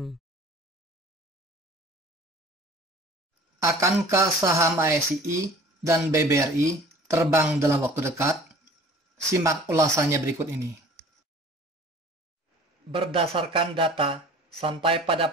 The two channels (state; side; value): normal; both; correlation 0.47